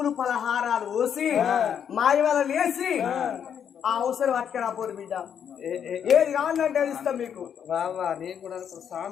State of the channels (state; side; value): quieter; right; 8.3 dB